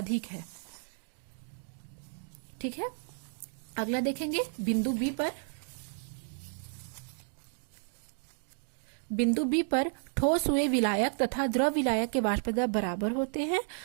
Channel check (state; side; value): silent; left; 56 dB below the other